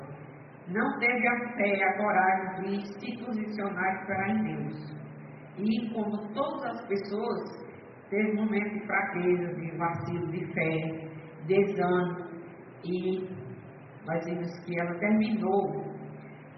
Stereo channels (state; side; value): identical; both; correlation 1.00